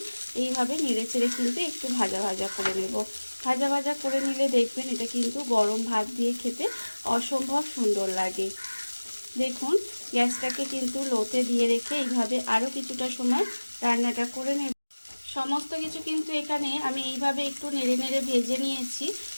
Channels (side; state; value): both; inverted; correlation -1.00